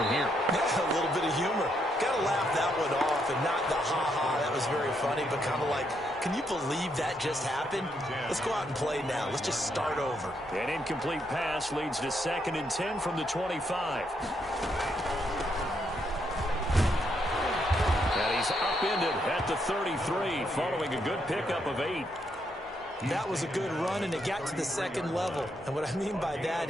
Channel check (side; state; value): both; normal; correlation 0.77